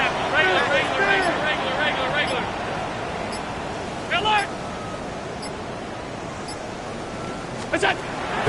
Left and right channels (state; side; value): identical; both; correlation 1.00